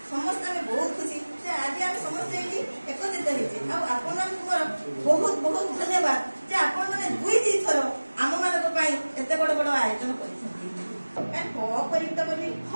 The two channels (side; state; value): both; inverted; correlation -1.00